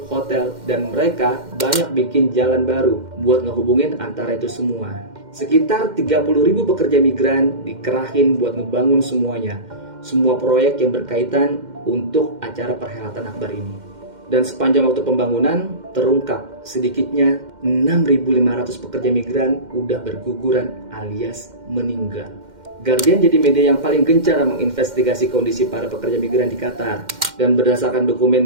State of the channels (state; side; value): late; left; 2.1 ms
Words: hotel, dan mereka banyak bikin jalan baru buat ngehubungin antara itu semua. Sekitar 30.000 pekerja migran dikerahin buat ngebangun semuanya. Semua proyek yang berkaitan untuk acara perhelatan akbar ini. Dan sepanjang waktu pembangunan, terungkap sedikitnya 6.500 pekerja migran udah berguguran alias meninggal. Guardian jadi media yang paling gencar menginvestigasi kondisi para pekerja migran di Qatar. Dan berdasarkan